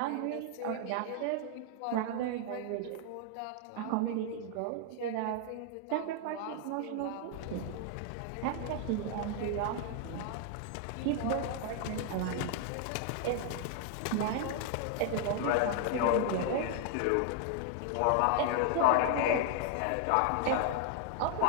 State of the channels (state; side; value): different; both; correlation 0.00